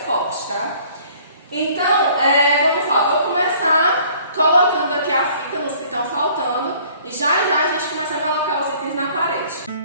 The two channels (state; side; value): inverted; both; correlation -0.55